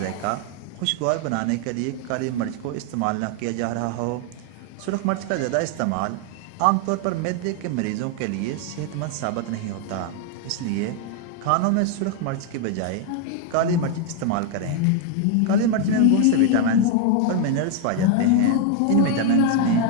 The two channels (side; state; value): both; different; correlation 0.01